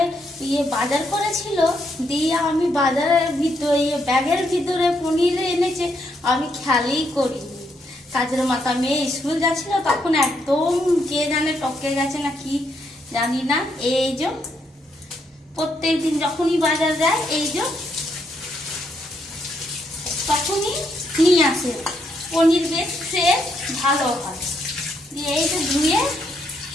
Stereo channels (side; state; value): both; normal; correlation 0.76